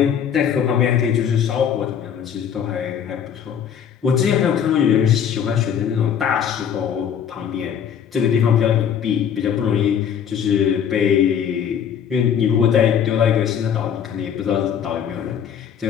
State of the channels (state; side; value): quieter; right; 8.3 dB